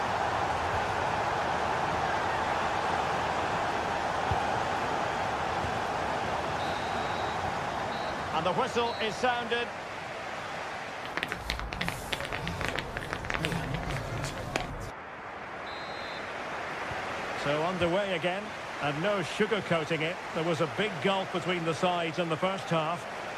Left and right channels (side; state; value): both; identical; correlation 1.00